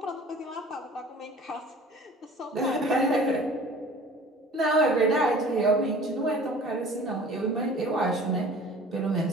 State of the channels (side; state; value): both; normal; correlation 0.46